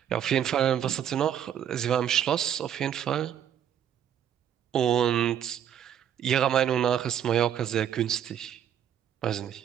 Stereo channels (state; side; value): quieter; left; 9.6 dB